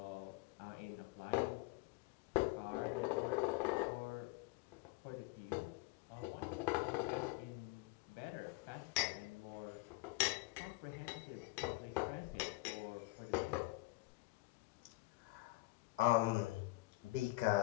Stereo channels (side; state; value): right; quieter; 21.1 dB